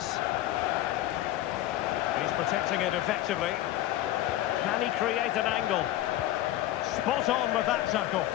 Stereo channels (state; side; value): quieter; right; 14.3 dB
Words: He's protecting it effectively. Can he create an angle? Spot on with that tackle.